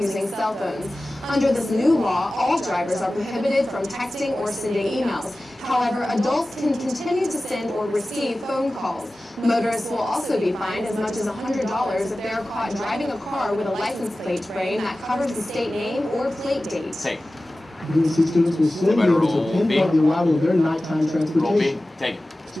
cell phones. Under this new law, all drivers are prohibited from texting or sending emails. However, adults can continue to send or receive phone calls. Motorists will also be fined as much as $100 if they are caught driving a car with a license plate frame that covers the state name or plate date. Take. UNC students will soon be able to pinpoint the arrival of their nighttime Roll B. transportation. Take it.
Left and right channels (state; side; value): normal; both; correlation 0.96